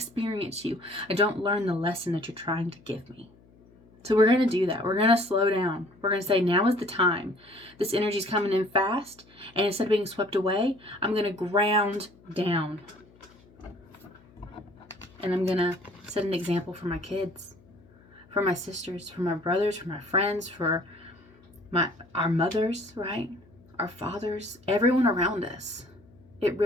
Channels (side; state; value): left; noise; hum, 28 dB below the sound